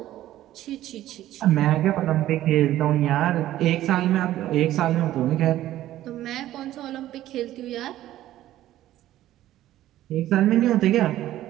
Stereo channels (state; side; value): quieter; left; 13.8 dB